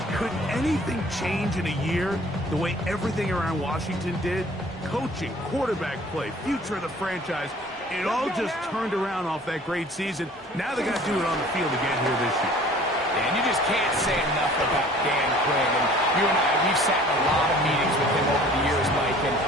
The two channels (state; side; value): normal; both; correlation 0.50